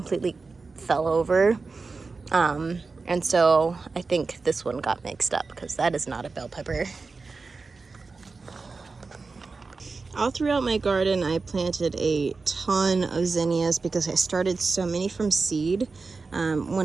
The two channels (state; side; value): quieter; left; 4.2 dB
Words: fell over. And so I think this one got mixed up because that is not a bell pepper. All throughout my garden, I planted a ton of zinnias because I started so many from seed.